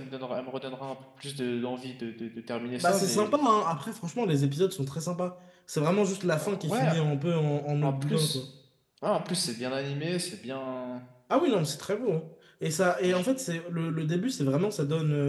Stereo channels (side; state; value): both; identical; correlation 1.00